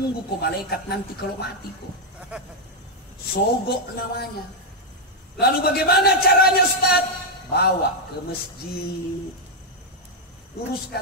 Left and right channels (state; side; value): normal; both; correlation 0.00